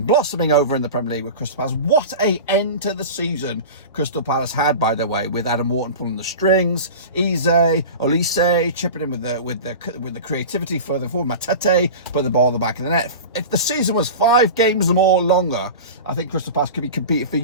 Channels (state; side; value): inverted; both; correlation -0.31